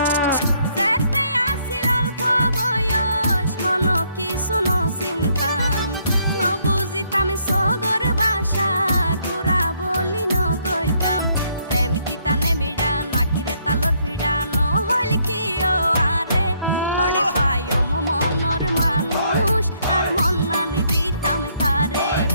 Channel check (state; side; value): inverted; both; correlation -0.70